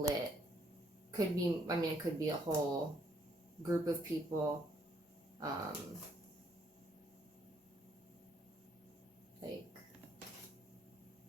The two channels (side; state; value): both; normal; correlation 0.69